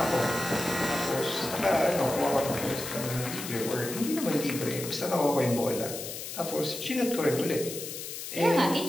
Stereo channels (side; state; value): left; noise; hiss, 8 dB below the sound